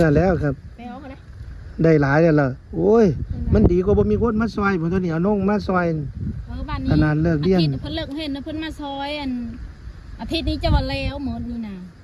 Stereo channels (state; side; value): identical; both; correlation 1.00